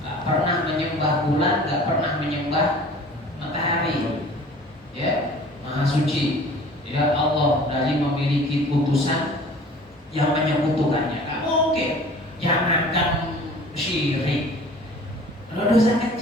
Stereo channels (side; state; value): both; normal; correlation 0.46